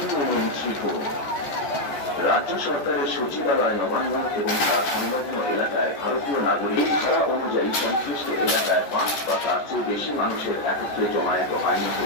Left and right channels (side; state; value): right; late; 14 ms